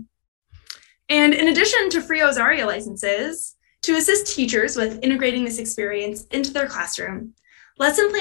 And in addition to free Ozaria licenses, to assist teachers with integrating this experience into their classroom, lesson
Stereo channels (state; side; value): silent; right; digital silence